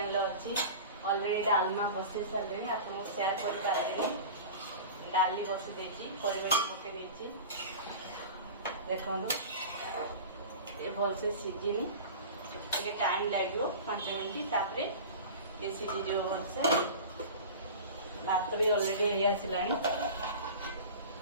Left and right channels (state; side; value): inverted; both; correlation -0.34